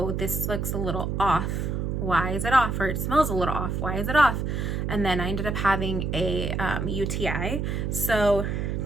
this looks a little off. Why is it off? Or it smells a little off. Why is it off? And then I ended up having a UTI. So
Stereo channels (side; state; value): right; noise; hum, 1 dB below the sound